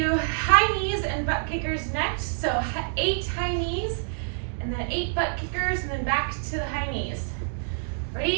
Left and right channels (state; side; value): silent; left; digital silence